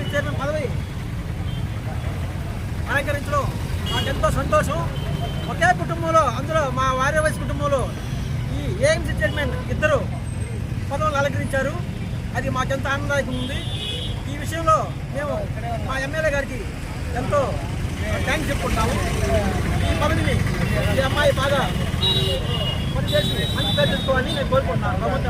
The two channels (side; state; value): both; identical; correlation 1.00